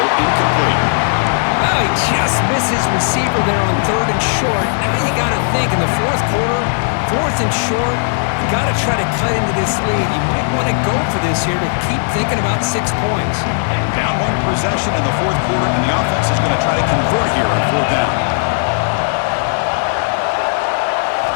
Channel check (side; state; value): right; silent; digital silence